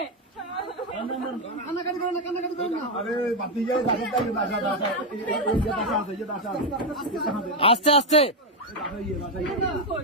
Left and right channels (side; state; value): both; normal; correlation 0.06